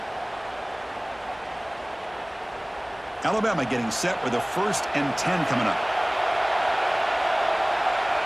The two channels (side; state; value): left; noise; hum, 29 dB below the sound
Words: Alabama getting set with a 1st and 10 coming up.